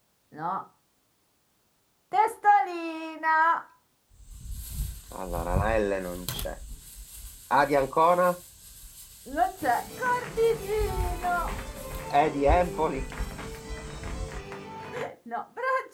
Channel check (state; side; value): identical; both; correlation 1.00